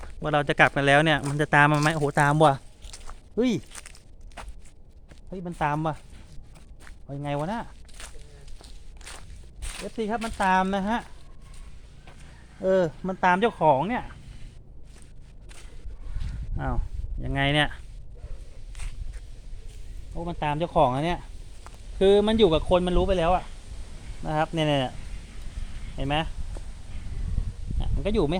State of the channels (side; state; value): both; identical; correlation 1.00